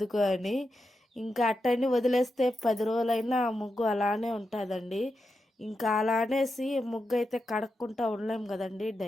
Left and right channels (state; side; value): normal; both; correlation 0.88